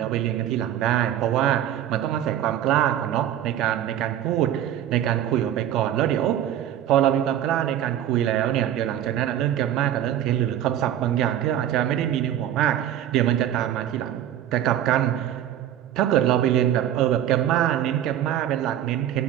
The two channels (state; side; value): quieter; left; 11.2 dB